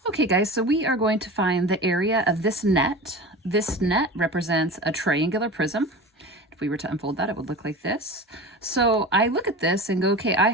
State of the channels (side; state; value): both; normal; correlation 0.32